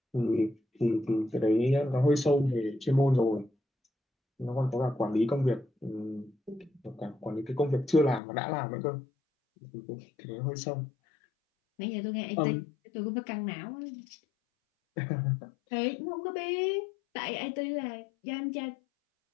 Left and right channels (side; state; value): right; drops out; at 8.2 s